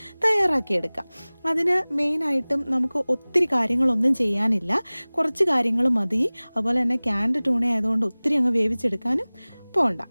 തയ്യാറാക്കിയെടുക്കാം. അതിന് മെയിനായിട്ടും നമുക്ക് ഒത്തിരി കാര്യങ്ങളൊന്നും ചെയ്യാനില്ല, കുറച്ച് കാര്യങ്ങൾ മതി. അതുപോലെ തന്നെ ക്യാൻഡ് ട്യൂണ ആയതുകൊണ്ട് ഒത്തിരി അങ്ങ് വേവിച്ചെടുക്കാനും പോകണ്ട.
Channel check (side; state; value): both; inverted; correlation -1.00